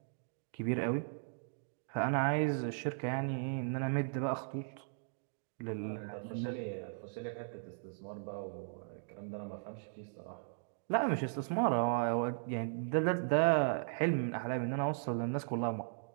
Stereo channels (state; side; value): silent; left; digital silence